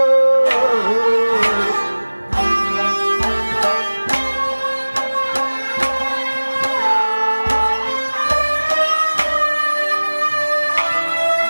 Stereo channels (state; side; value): inverted; both; correlation -1.00